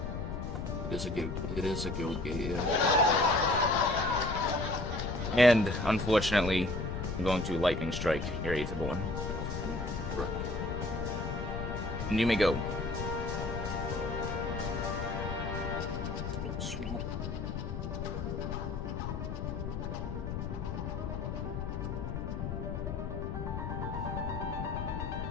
It is a guild gate, yeah. And, unfortunately, I'm going to Lightning Strike your Aetherborn. Correct. And you may go.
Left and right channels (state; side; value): noise; left; rumble, 4 dB below the sound